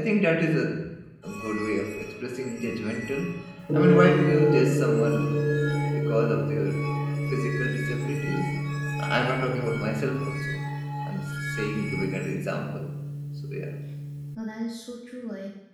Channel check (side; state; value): both; identical; correlation 1.00